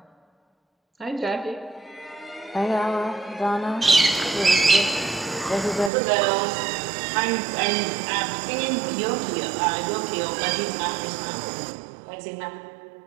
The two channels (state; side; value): drops out; left; at 5.9 s